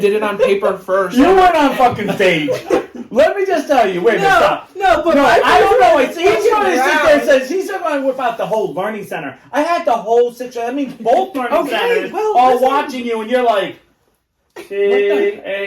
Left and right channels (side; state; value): both; identical; correlation 1.00